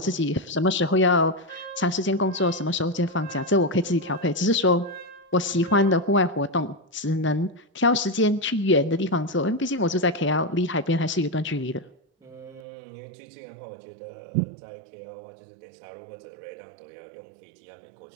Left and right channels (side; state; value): left; drops out; at 12.6 s